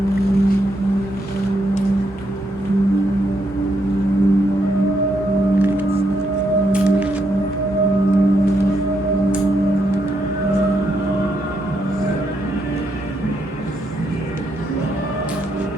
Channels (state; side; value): normal; both; correlation 0.78